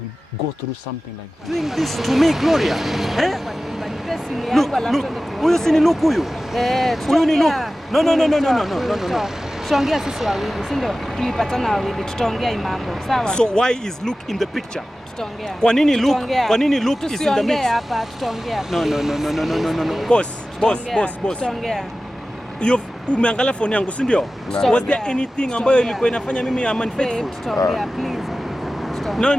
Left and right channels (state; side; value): normal; both; correlation 0.95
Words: will go through something like that. Doing this to me, Gloria. Eh? Look, huyu si ni Luke huyu? Huyu ni Luke. No. Tutaongea sisi wawili, si ndio? Tulipatana wawili, tutaongea mambo. Sawa? So why is Luke in the picture? Tutaongea. Kwa nini Luke is in the mix? Hapa tutaongea. No. Boss. Tutaongea. Umeangalia phone yangu, si ndio? Was there anything ambayo ilikuwa inafanya mimi am unfaithful? Tutaongea, please. No.